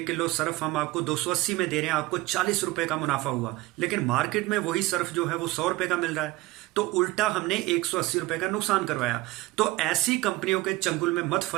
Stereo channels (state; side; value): quieter; left; 19.1 dB